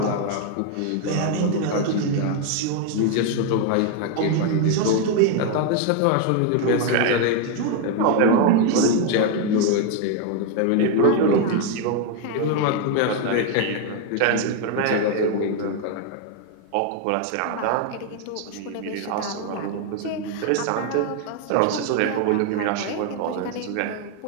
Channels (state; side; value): different; both; correlation 0.01